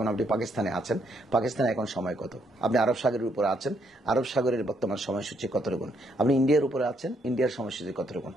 আপনি পাকিস্তানে আছেন, পাকিস্তানে এখন সময় কত? আপনি আরব সাগরের উপর আছেন, আরব সাগরের বর্তমান সময়সূচি কত রকম? আপনি ইন্ডিয়ার উপরে আছেন, ইন্ডিয়ার সময়সূচি কত রকম?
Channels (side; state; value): both; normal; correlation 0.73